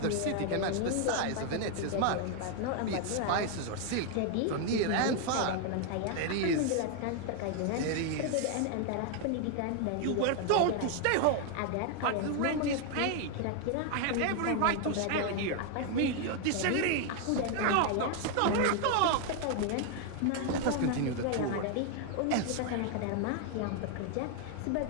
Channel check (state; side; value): different; both; correlation 0.00